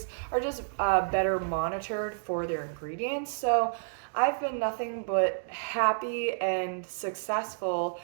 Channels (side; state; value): left; silent; digital silence